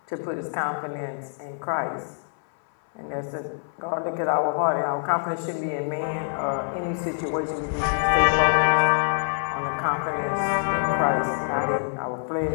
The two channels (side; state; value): right; silent; 62 dB below the other